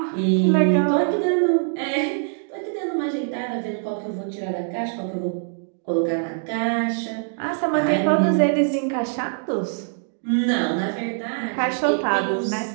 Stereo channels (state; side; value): silent; left; 63 dB below the other